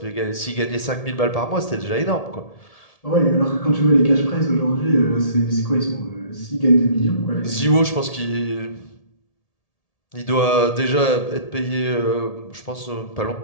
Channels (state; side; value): late; right; 1.7 ms